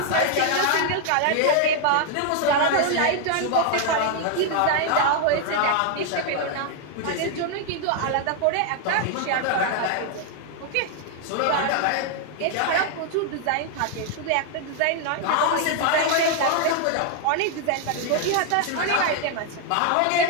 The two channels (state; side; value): different; both; correlation 0.00